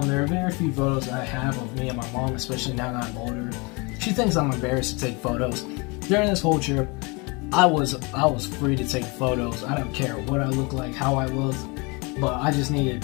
There are very few photos I have of me and my mom, especially now that I'm older. She thinks I'm embarrassed to take photos. During this whole trip, I was free to take photos. I don't care what I look like, how I look, but I just needed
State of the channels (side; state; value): right; quieter; 28.7 dB